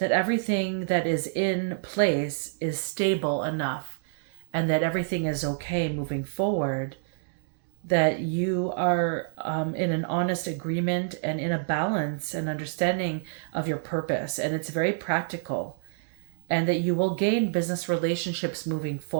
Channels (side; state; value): left; silent; digital silence